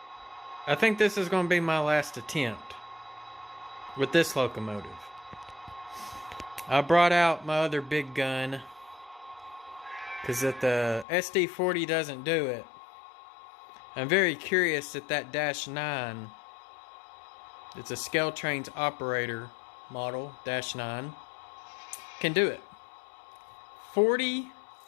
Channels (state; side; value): drops out; right; at 11.1 s